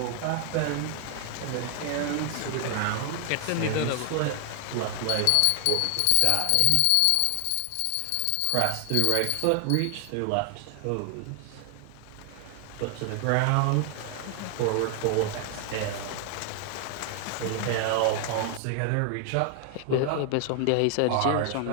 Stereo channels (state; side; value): different; both; correlation 0.00